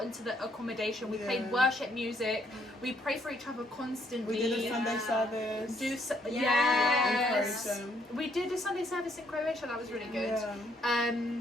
into the accommodation, we played Yeah. worship music, we prayed for each other constantly. we did a Sunday Yeah. service. Yes. In Croatia. We did a Sunday service in Croatia, that was really good. Yeah.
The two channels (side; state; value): both; normal; correlation 0.70